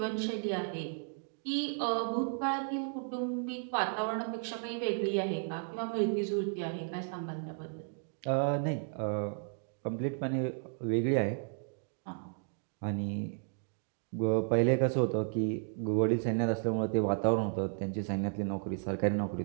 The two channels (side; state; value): left; silent; 55 dB below the other